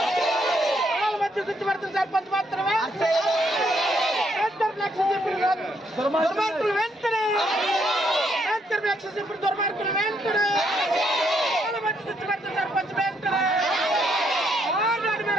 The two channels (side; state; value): both; normal; correlation 0.73